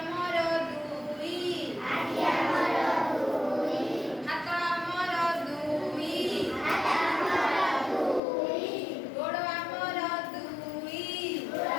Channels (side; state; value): right; drops out; at 8.2 s